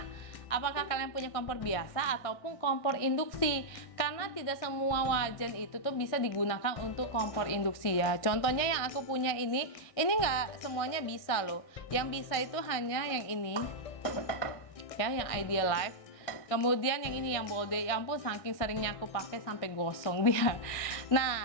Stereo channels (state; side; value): late; right; 1.6 ms